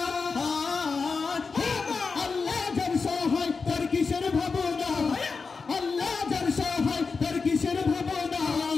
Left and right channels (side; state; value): right; quieter; 4.7 dB